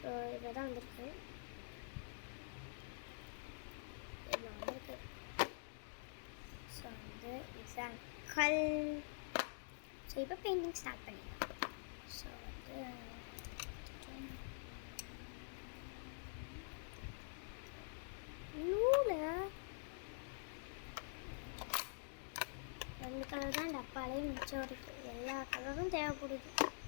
இதில் தான் வந்திருக்கு, இதில் வந்திருக்கு. ஸோ வந்து இதுதான் கல். ஸோ இப்போ பெயிண்டிங் ஸ்டார்ட் பண்ணிடலாம். ஸோ வந்து ரெண்டு கலர் தான் டப்பாலே மிச்சம் இருக்குது. எல்லா கலரும் தேவைப்படுது.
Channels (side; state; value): right; silent; digital silence